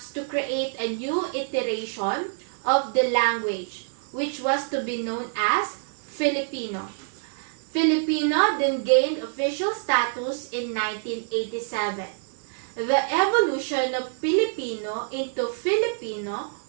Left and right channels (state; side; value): silent; left; digital silence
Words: to create a new iteration of the language, which was to be known as Filipino. Filipino then gained official status in 1987. The evolution of Filipino into Filipino